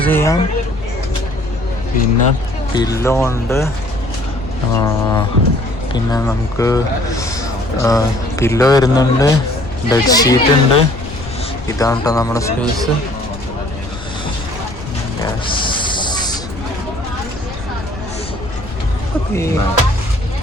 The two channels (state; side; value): noise; left; rumble, 13 dB below the sound